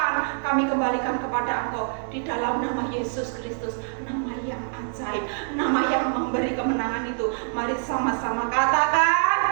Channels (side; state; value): left; silent; digital silence